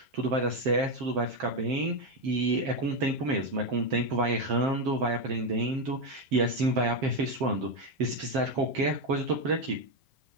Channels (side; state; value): left; late; 7.5 ms